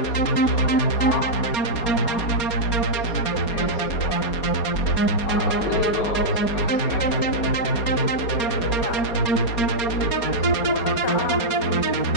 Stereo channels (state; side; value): late; right; 4.8 ms